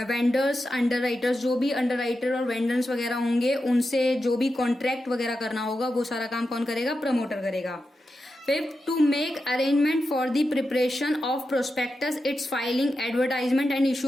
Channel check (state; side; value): normal; both; correlation 0.89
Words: vendors underwriters, जो भी अंडर राइटर और वेंडर्स वगैरह होंगे उनसे जो भी कॉन्ट्रैक्ट वगैरह करना होगा वो सारा काम कौन करेगा, प्रमोटर करेगा। Fifth to make arrangement for the preparation of prospectus, its filing, advertisement and